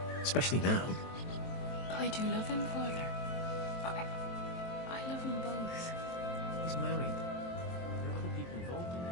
Especially now. I do love him, Father. I love them both. He's married. There are other people involved in this.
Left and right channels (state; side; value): late; right; 23 ms